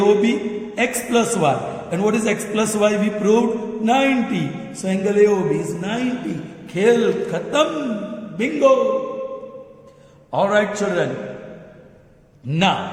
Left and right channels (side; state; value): both; identical; correlation 1.00